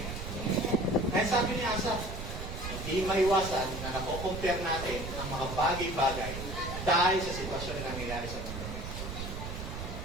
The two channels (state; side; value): noise; right; rumble, 7 dB below the sound